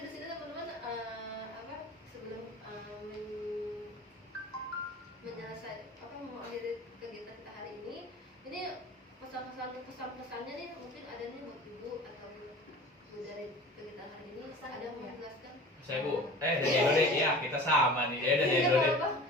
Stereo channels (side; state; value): both; normal; correlation 0.40